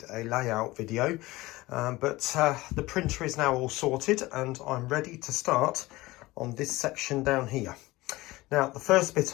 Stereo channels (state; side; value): quieter; right; 19.6 dB